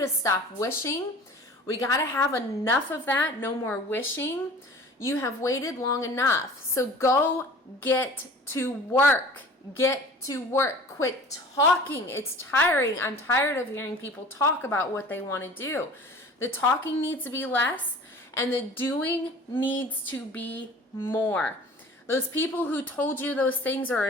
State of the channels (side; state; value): both; normal; correlation 0.44